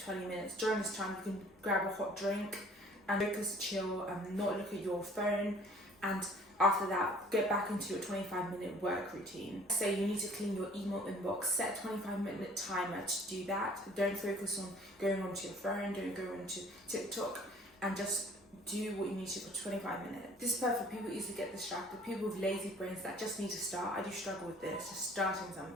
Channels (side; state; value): both; normal; correlation 0.53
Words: 20 minutes. During this time, you can grab a hot drink and focus, chill, and not look at your phone. And after that, get back into your 25-minute work routine. Say you need to clean your email inbox, set a 25-minute timer to do that. Don't focus on going onto your phone, don't go onto TikTok, and just do what you need to for 25 minutes. This is perfect for people who easily get distracted, people with lazy brains that just need to start. I do struggle with this, just starting